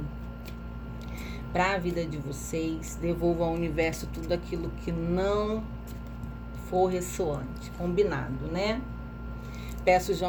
para a vida de vocês. Devolva ao universo tudo aquilo que não for ressoante. Combinado, né? Peço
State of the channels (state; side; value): identical; both; correlation 1.00